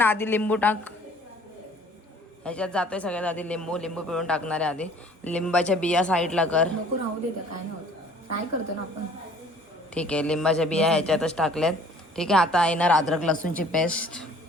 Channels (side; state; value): both; normal; correlation 0.53